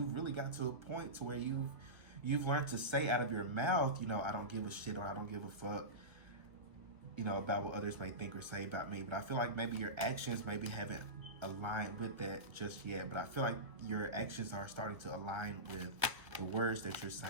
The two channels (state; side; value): late; left; 1.5 ms